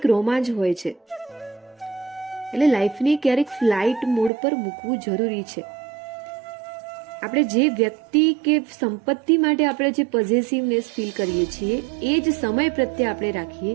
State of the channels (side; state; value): left; drops out; at 4.3 s